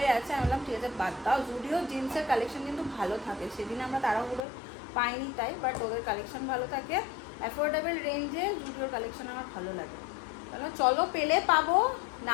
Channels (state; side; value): drops out; right; at 4.5 s